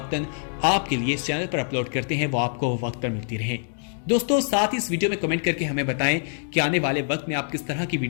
आपके लिए इस चैनल पर अपलोड करते हैं वो आपको वक्त पर मिलती रहे। دوستو ساتھ اس ویڈیو میں کمنٹ کر کے ہمیں بتائیں کہ آنے والے وقت میں آپ کس طرح کی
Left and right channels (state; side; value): silent; right; digital silence